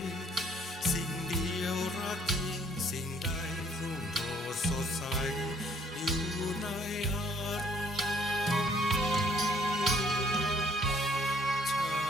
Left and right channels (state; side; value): normal; both; correlation 0.62